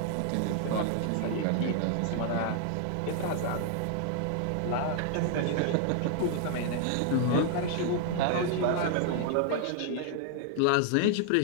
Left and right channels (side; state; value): both; different; correlation 0.00